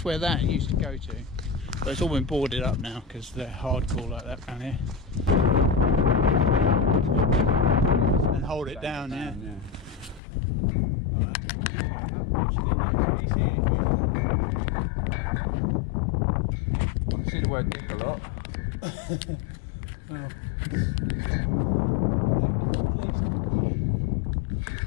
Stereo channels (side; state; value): right; drops out; at 10.2 s